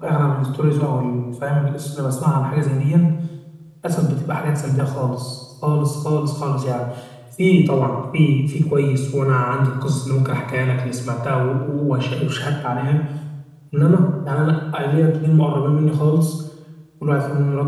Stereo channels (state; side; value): identical; both; correlation 1.00